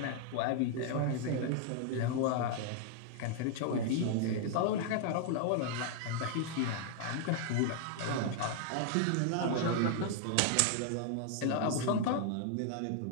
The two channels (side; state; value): both; different; correlation 0.00